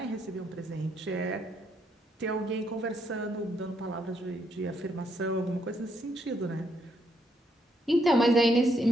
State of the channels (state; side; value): normal; both; correlation 0.75